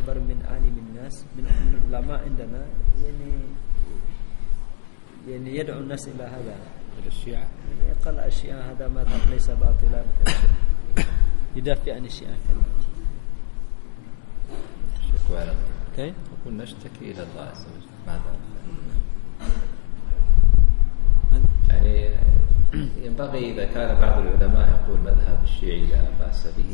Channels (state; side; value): silent; right; 64 dB below the other